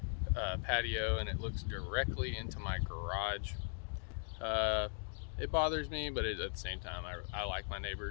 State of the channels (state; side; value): silent; right; 52 dB below the other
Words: patio, and it looks directly into my garage. It bothers me, but at the same time, I like my